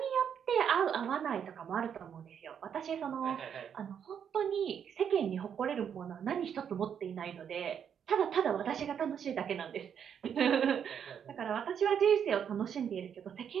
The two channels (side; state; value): left; quieter; 8.1 dB